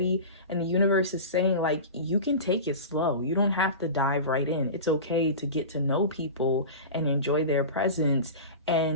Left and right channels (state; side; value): inverted; both; correlation -0.31